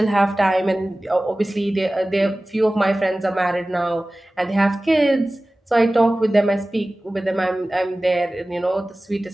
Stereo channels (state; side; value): normal; both; correlation 0.97